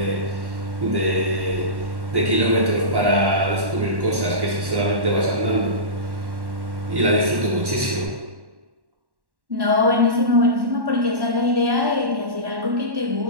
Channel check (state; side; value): late; left; 1.1 ms